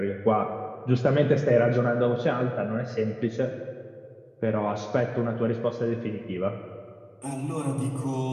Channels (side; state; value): both; identical; correlation 1.00